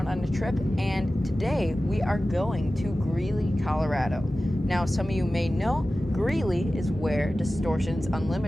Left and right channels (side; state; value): both; normal; correlation 0.95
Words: on a trip, and today we are going to Greeley, Colorado. Now, some of you may know, Greeley is where Distortions